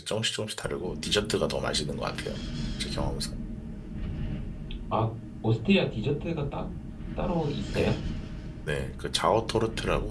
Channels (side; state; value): both; identical; correlation 1.00